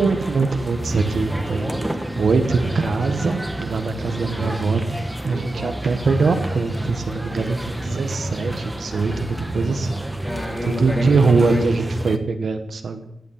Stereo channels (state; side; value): quieter; left; 3.1 dB